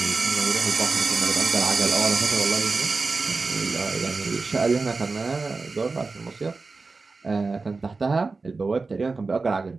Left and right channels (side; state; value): left; quieter; 4.0 dB